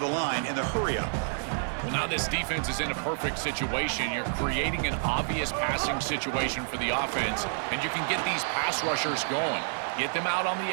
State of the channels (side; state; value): left; silent; 58 dB below the other